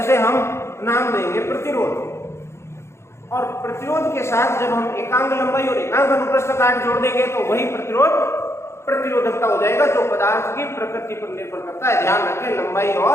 हम नाम देंगे प्रतिरोध। और प्रतिरोध के साथ जब हम एकांक लंबाई और एकांक अनुप्रस्थ काट जोड़ देंगे तो वही प्रतिरोधकता हो जाएगा, जो पदार्थ की प्रकृति पर निर्भर करता है। ध्यान रखें, लंबाई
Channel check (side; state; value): right; late; 0.13 ms